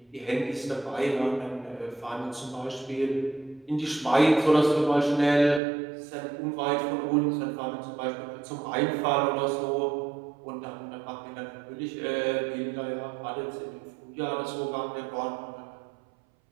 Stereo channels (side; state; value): left; drops out; at 5.6 s